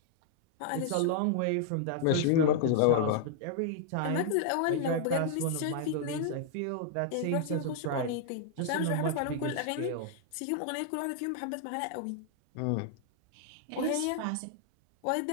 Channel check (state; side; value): different; both; correlation -0.01